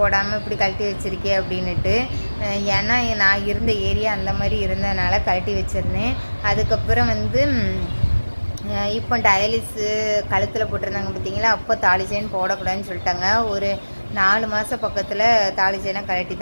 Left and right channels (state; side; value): inverted; both; correlation -1.00